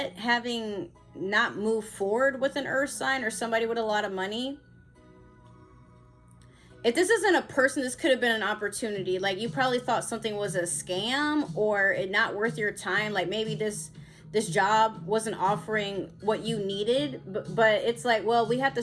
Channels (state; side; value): identical; both; correlation 1.00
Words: having not moved forward with an earth sign or somebody with a lot of money. If this isn't a person, this could have been an opportunity. Like, you probably thought something was a scam or it not worth your time. Like, maybe this job wasn't offering what you needed, but it's like, well, we have to